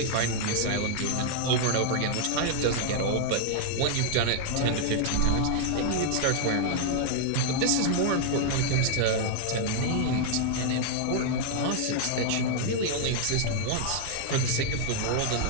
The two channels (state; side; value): different; both; correlation 0.00